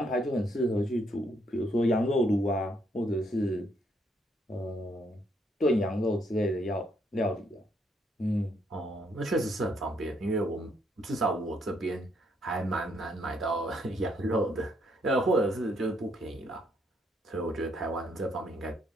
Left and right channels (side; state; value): both; normal; correlation 0.72